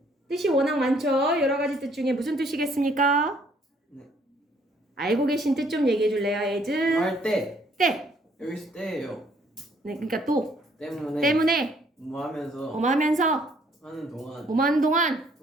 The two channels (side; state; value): both; normal; correlation 0.64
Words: 뜻이 워낙 많죠. 여러 가지 뜻 중에 무슨 뜻이겠습니까? 네. 알고 계신 뜻 좀 얘기해 줄래요, as? 할 때. 때. 여기서 때예요. 네, 그러니까 또 때문에. 뭐 하면서 하는 동안. 뭐하는 동안